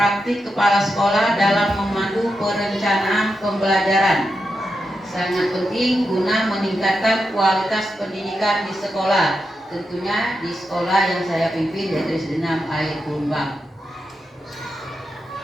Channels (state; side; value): normal; both; correlation 0.87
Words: kepala sekolah dalam memandu perencanaan pembelajaran. Sangat penting guna meningkatkan kualitas pendidikan di sekolah, tentunya di sekolah yang saya pimpin yaitu SD 6 Air Kumbang.